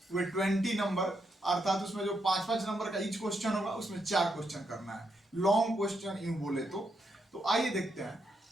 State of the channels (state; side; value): normal; both; correlation 0.81